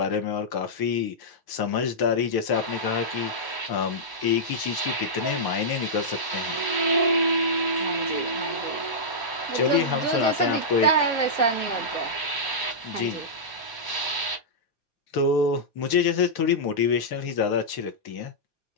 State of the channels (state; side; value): late; right; 1.0 ms